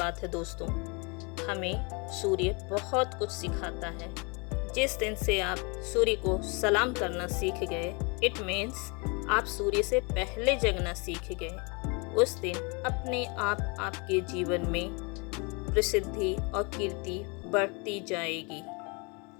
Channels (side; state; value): right; quieter; 31.1 dB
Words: है दोस्तों। हमें सूर्य बहुत कुछ सिखाता है। जिस दिन से आप सूर्य को सलाम करना सीख गए, इट मीन्स आप सूर्य से पहले जगना सीख गए। उस दिन अपने आप आपके जीवन में प्रसिद्धि और कीर्ति बढ़ती जाएगी।